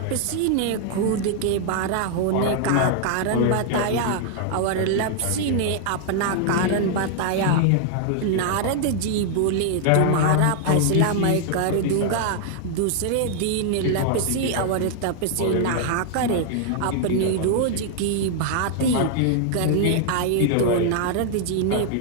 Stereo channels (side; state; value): both; different; correlation 0.00